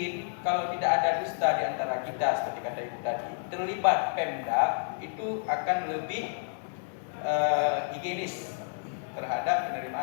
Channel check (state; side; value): silent; right; digital silence